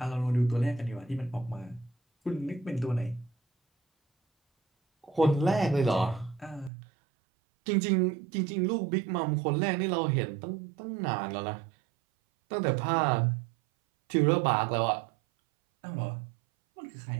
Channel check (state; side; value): drops out; left; at 6.7 s